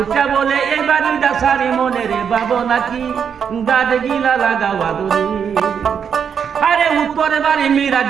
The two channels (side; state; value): left; quieter; 7.3 dB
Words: বলে এই বাড়িটা সারি মনের ভাবনা কি গাছ গিলা লাগাওয়া দড়ি আরে উত্তরের বাড়ি